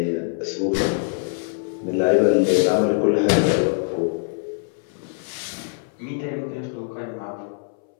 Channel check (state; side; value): silent; right; 63 dB below the other